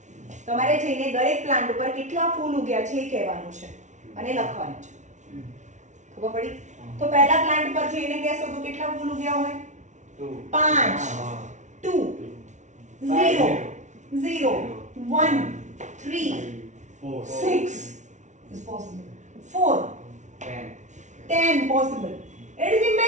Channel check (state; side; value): late; left; 0.35 ms